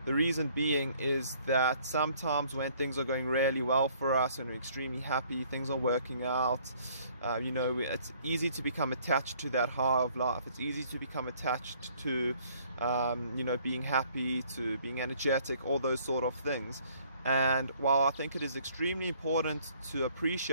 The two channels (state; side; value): inverted; both; correlation -0.61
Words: The reason being is that sometimes when things are going really well for us and we're extremely happy, things are working out, it's easy to become attached to that high of life. It's easy to become attached to being happy, to being energetic, all those sort of things. And while I think it is extremely important to